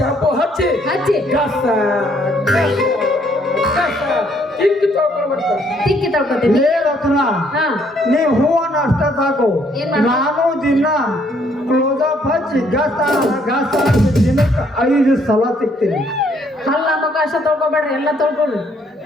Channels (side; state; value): both; normal; correlation 0.67